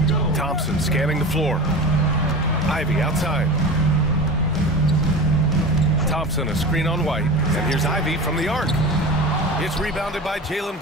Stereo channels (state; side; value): normal; both; correlation 0.31